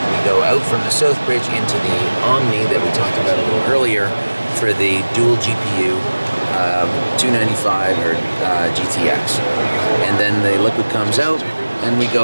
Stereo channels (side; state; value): both; inverted; correlation -1.00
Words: we go out from the south bridge into the Omni that we talked about a little earlier for the dual GPU 295 or GTX. And then the liquid comes out, and we